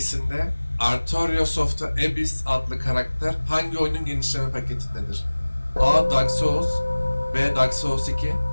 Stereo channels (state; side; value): inverted; both; correlation -1.00